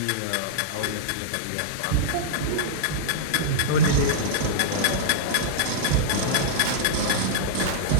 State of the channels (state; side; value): different; both; correlation -0.02